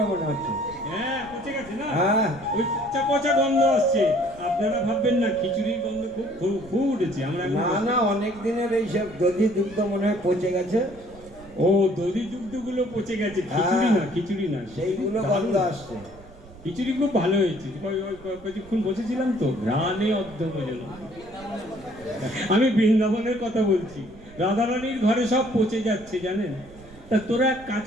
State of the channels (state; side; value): noise; right; rumble, 21 dB below the sound